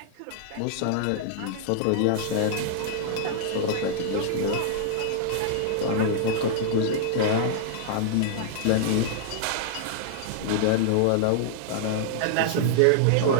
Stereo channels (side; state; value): both; different; correlation -0.01